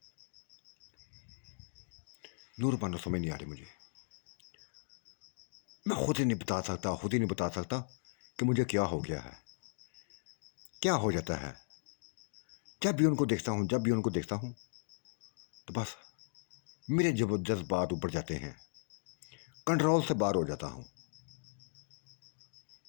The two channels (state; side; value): silent; right; digital silence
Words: नूर पाना समझ नहीं आ रही मुझे। मैं खुद ही नहीं बता सकता, खुद ही नहीं बता सकता कि मुझे क्या हो गया है, क्या हो जाता है। जब भी उनको देखता हूँ, जब भी उनको देखता हूँ तो बस मेरे जज्बात ऊपर जाते हैं, कंट्रोल से बाहर हो जाता हूँ।